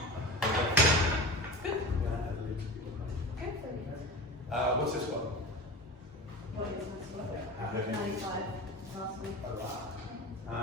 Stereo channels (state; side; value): normal; both; correlation 0.31